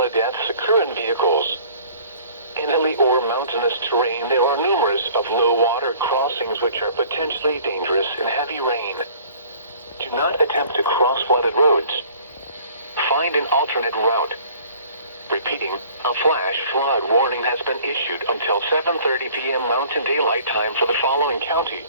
deaths occur in vehicles. In hilly or mountainous terrain, there are numerous of low water crossings which are potentially dangerous in heavy rain. Do not attempt to cross flooded roads. Find an alternate route. Repeating, a flash flood warning has been issued until 7:30 p.m. Mountain Daylight Time for the following county:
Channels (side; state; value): both; inverted; correlation -0.52